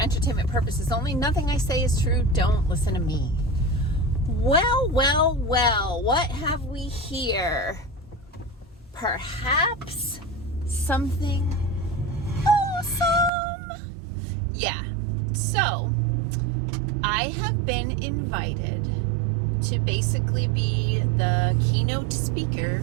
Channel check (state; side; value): drops out; left; at 13.3 s